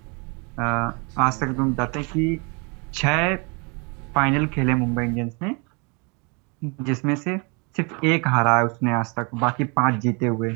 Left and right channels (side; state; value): left; quieter; 32.4 dB